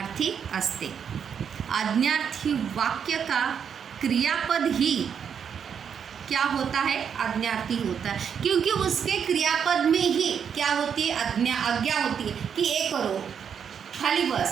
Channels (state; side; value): quieter; left; 7.5 dB